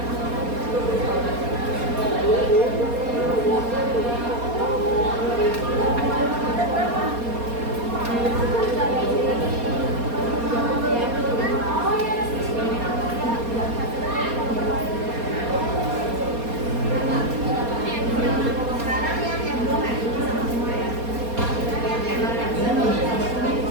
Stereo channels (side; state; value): left; late; 4.2 ms